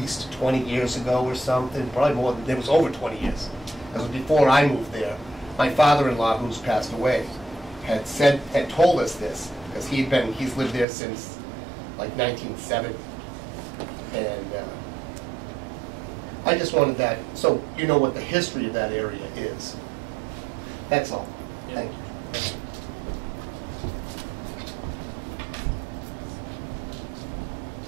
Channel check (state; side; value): drops out; left; at 10.9 s